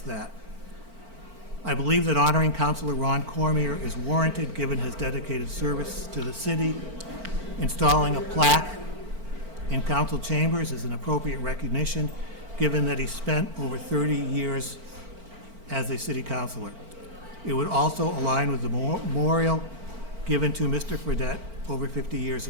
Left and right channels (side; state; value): left; late; 4.4 ms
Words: that. I believe that honoring Councilor Ron Cormier is warranted given his dedicated service to the city. Installing a plaque in council chambers is an appropriate recognition given that he spent over 30 years as a city councilor. It would also align with the memorial given to Mr. Fredette over 50 years